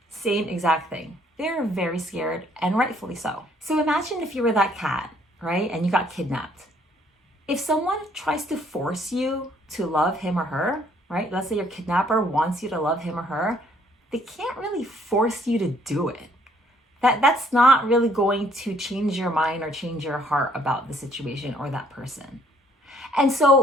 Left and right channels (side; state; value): both; normal; correlation 0.64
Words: Same exact thing. They're very scared, and rightfully so. So imagine if you were that cat, right? And you got kidnapped. If someone tries to force you to love him or her, right? Let's say your kidnapper wants you to love him or her, they can't really force you to do it. That's not really going to change your mind or change your heart about the situation or that person. And